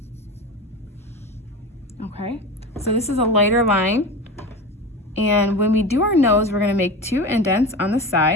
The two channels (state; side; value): normal; both; correlation 0.28